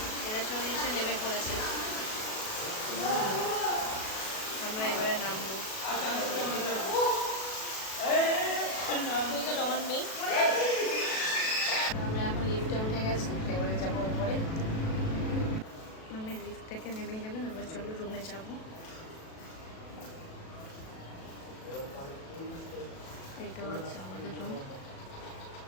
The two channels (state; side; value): late; right; 37 ms